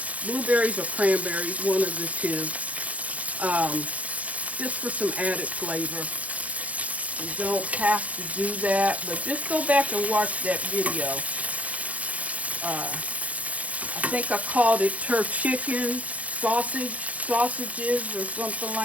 or cranberries, one of the two, just for some added flavor. You don't have to do that, but just go back and watch that video. I think I called it chicken sausages or something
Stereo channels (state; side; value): late; left; 0.068 ms